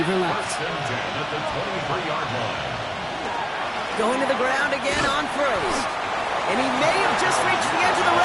left. First and 10 at the 23-yard line. Going to the ground again on first. And he may have just reached the edge of the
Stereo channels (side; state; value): both; identical; correlation 1.00